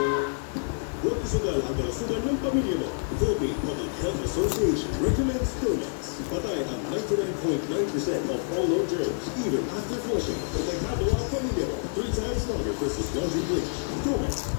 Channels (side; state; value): right; silent; digital silence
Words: Huwag isugal ang kalusugan ng pamilya mo. Philippine Public Health Association recommends Domex. Patay ang 99.9% of all low germs, even after flushing. Protektado ang pamilya mo 3 times longer versus laundry bleach. Domex,